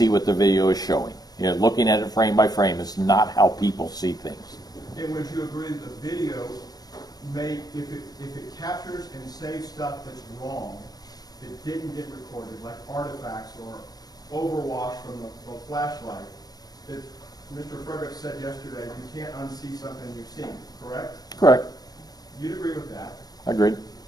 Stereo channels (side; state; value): right; late; 0.19 ms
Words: what the video is showing. You know, looking at it frame by frame is not how people see things. And would you agree that the video may, if it captures and saves stuff that's wrong, that didn't get recorded, like artifacts or overwash from the flashlight, that Mr. Frederick said yesterday, you can't unsee something you've seen, correct? Correct. You'd agree with that? Agreed.